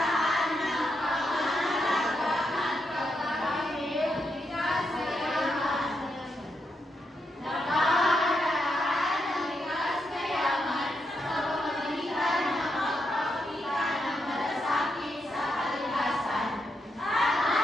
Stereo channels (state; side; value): normal; both; correlation 0.82